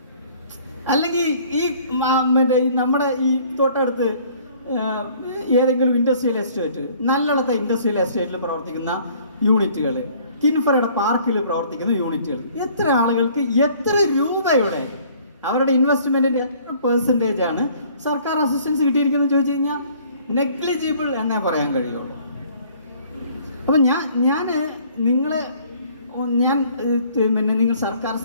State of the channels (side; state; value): both; inverted; correlation -0.56